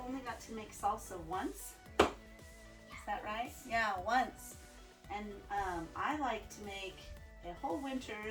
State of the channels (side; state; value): both; identical; correlation 1.00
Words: got to make salsa once. Is that right? Yeah, once. And I like to make a whole